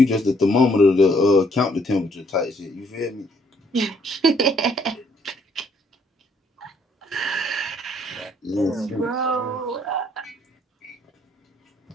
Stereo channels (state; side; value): normal; both; correlation 0.67